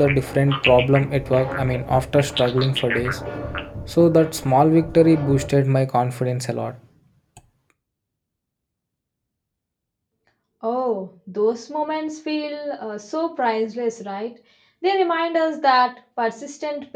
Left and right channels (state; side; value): identical; both; correlation 1.00